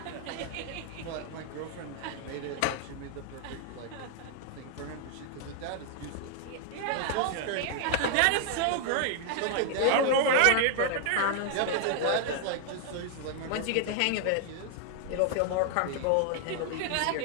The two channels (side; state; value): both; different; correlation 0.00